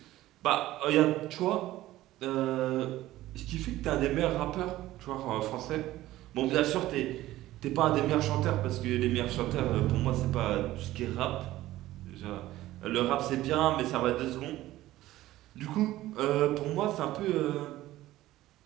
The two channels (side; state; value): left; quieter; 15.7 dB